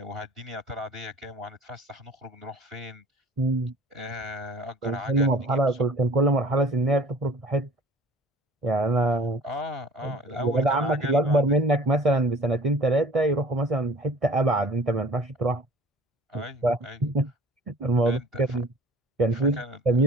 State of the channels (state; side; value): normal; both; correlation 0.48